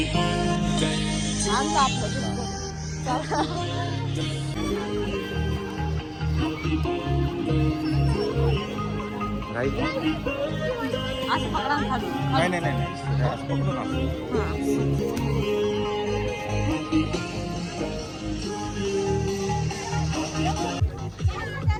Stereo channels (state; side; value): identical; both; correlation 1.00